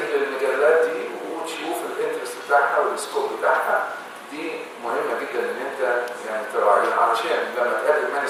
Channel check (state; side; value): identical; both; correlation 1.00